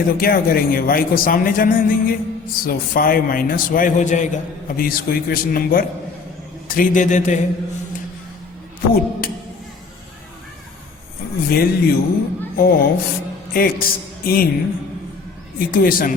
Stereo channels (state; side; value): quieter; right; 4.6 dB